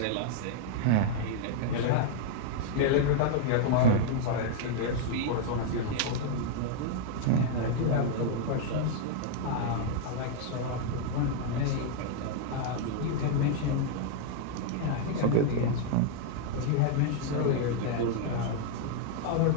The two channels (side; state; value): both; different; correlation 0.00